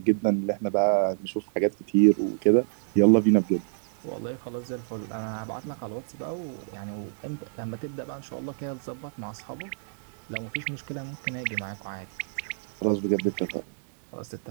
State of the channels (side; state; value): left; silent; digital silence